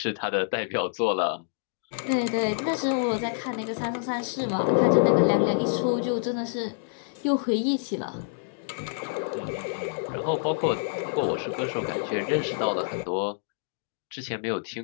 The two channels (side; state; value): right; silent; digital silence